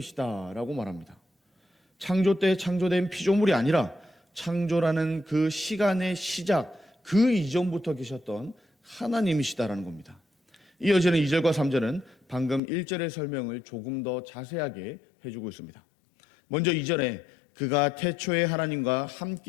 말합니다. 창조 때 창조된 피조물이 아니라 창조라는 그 시간의 시작, 그 이전부터 계셨던 하나님이시다라는 겁니다. 이어지는 2절과 3절은 방금 1절의 설명을 조금 더 자세하게 해주고 있습니다. 먼저 2절에 그가 태초에 하나님과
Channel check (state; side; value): drops out; right; at 12.6 s